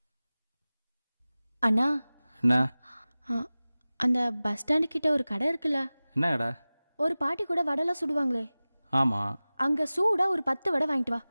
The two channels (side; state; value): both; inverted; correlation -0.98